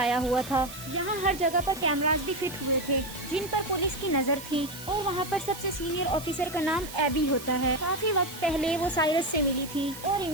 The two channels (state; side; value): noise; right; hiss, 13 dB below the sound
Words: हुआ था। यहाँ हर जगह पर कैमरास भी फिट हुए थे जिन पर पुलिस की नजर थी और वहाँ पर सबसे सीनियर ऑफिसर का नाम एबी होता है। काफी वक्त पहले वो साइरस से मिली थी और